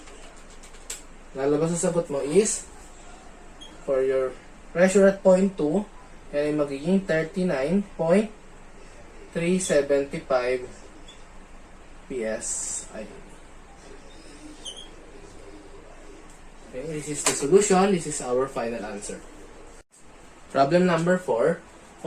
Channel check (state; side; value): identical; both; correlation 1.00